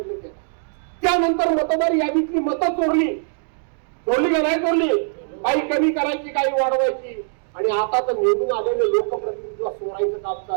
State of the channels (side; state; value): left; silent; digital silence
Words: केला. त्यानंतर मतदार यादीतली मतं चोरली का नाही चोरली? काही कमी करायची, काही वाढवायची. आणि आता तर निवडून आलेले लोकप्रतिनिधीला चोरायचं काम